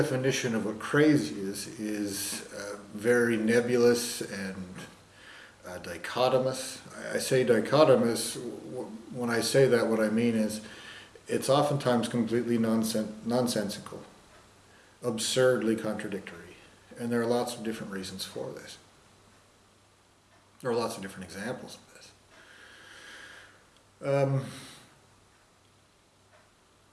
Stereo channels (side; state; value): both; identical; correlation 1.00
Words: of what crazy is very nebulous and dichotomous. I say dichotomous, when I say that what I mean is it's oftentimes completely nonsensical, absurdly contradictory, and there are lots of different reasons for this. There are lots of different examples of this.